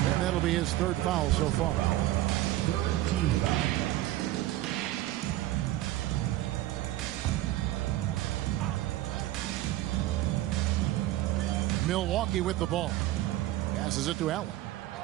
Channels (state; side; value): quieter; left; 15.4 dB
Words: that'll be his third foul so far. Third team foul. Milwaukee with the ball. Passes it to Allen.